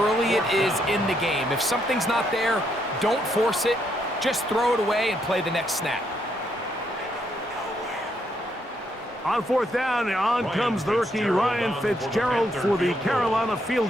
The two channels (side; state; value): both; normal; correlation 0.75